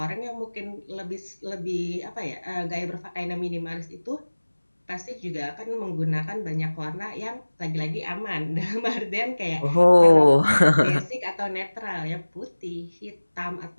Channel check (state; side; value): inverted; both; correlation -1.00